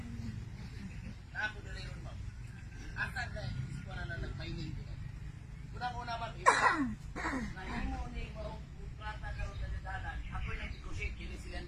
Ako dali ron, ma'am. Asa na iskuha na nag-mining ko. Unang-una, ma'am, nahimo ni mo plata karon sa dadalan. Ako'y nag-negotiate kini si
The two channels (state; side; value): identical; both; correlation 1.00